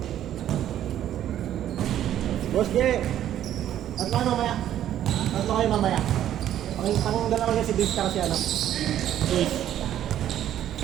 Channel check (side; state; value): left; quieter; 11.4 dB